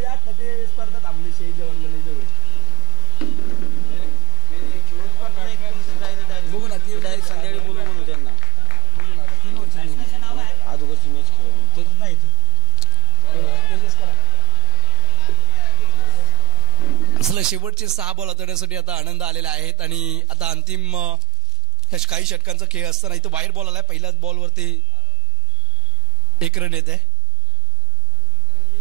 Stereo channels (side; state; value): left; quieter; 4.7 dB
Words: आता ते स्पर्धा थांबली शेही जेवण गणेश जवळ. बघू ना ती संध्याकाळी बोलू म्हणू त्यांना. 3 ओव्हरची अगोदरची मॅच खेळून ते नाही असलं. शेवटचे 6 बॉल हाताळण्यासाठी आता आनंद आलेला आहेत आणि आता अंतिम काही षटकांचा खेळ असताना इथं वाईट बॉल आलाय. पहिल्याच बॉलवरती 1 रन येते.